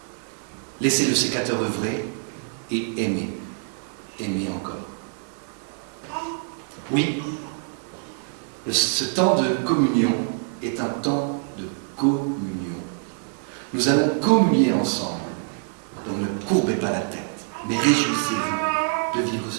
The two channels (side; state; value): left; silent; 59 dB below the other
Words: Laissez le sécateur œuvrer et aimez. Aimez encore. Oui, ce temps de communion est un temps de communion. Nous allons communier ensemble. Donc ne courbez pas la tête, mais réjouissez-vous de vivre